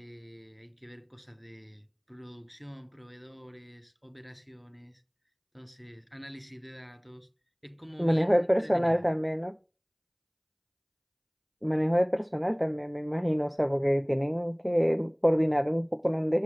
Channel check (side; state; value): both; identical; correlation 1.00